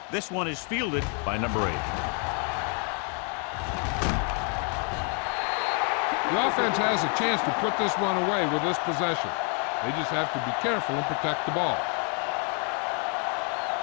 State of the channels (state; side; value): quieter; right; 38.5 dB